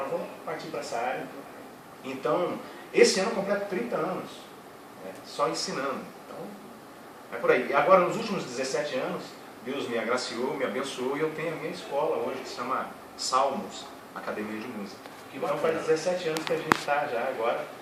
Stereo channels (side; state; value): both; identical; correlation 1.00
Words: vou partir para essa área. Então, esse ano eu completo 30 anos, né, só ensinando. Então, é por aí. E agora, nos últimos 17 anos, Deus me agraciou, me abençoou e eu tenho a minha escola hoje, que se chama Salmos, Academia de Música. Então faz 17 anos que a gente está já agora